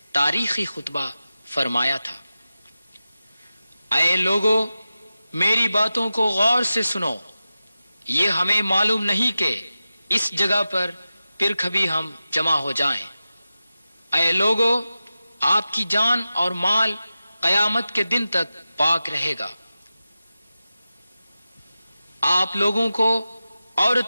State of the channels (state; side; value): inverted; both; correlation -0.93